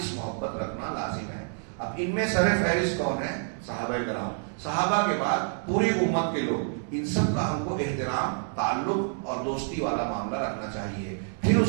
محبت رکھنا لازم ہے۔ اب ان میں سر فہرست کون ہے؟ صحابہ کرام۔ صحابہ کے بعد پوری امت کے لوگ، ان سب کا ہم کو احترام، تعلق اور دوستی والا معاملہ رکھنا چاہیے۔ پھر اس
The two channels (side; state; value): left; silent; 59 dB below the other